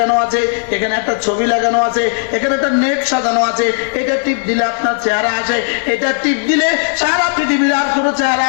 আছে, এখানে একটা ছবি লাগানো আছে, এখানে একটা নেট সাজানো আছে, এটা টিপ দিলে আপনার চেহারা আসে, এটা টিপ দিলে সারা পৃথিবীর আর কোনো চেহারা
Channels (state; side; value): silent; right; digital silence